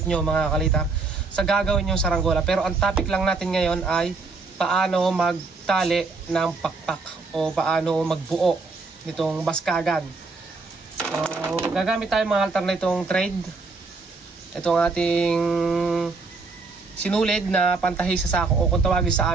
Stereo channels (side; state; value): left; quieter; 4.0 dB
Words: nyo mga kalitar sa gagawin yung saranggola. Pero ang topic lang natin ngayon ay paano magtali ng pakpak o paano magbuo nitong baskagan. So gagamit tayo mga altar na itong thread. Itong ating sinulid na pantahi sa sako o kung tawagin sa